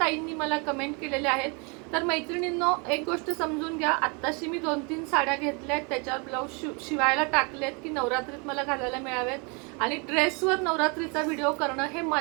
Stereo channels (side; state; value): left; quieter; 32.7 dB